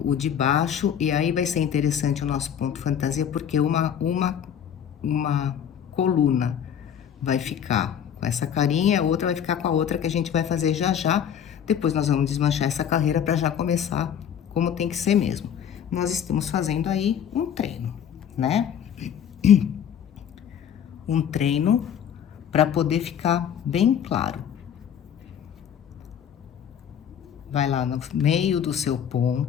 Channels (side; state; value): right; quieter; 8.8 dB